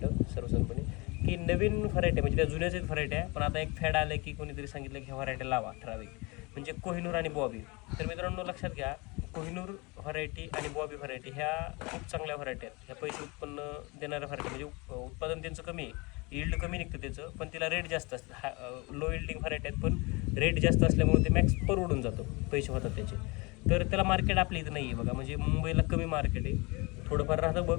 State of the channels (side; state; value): right; quieter; 26.8 dB